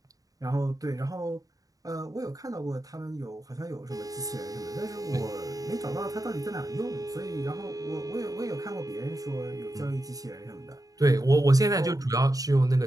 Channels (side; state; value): left; late; 0.17 ms